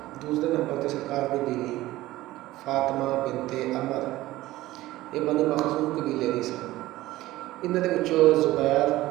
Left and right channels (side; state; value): left; quieter; 16.9 dB